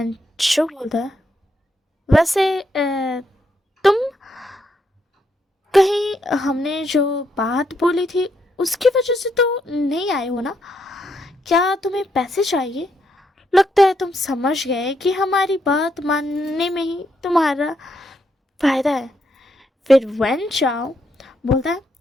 बोलता है वैसे तुम कहीं हमने जो बात बोली थी उसकी वजह से तो नहीं आए हो ना? क्या तुम्हें पैसे चाहिए? लगता है तुम समझ गए कि हमारी बात मानने में ही तुम्हारा फायदा है। फिर वेन चाओ बोलता है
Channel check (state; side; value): normal; both; correlation 0.78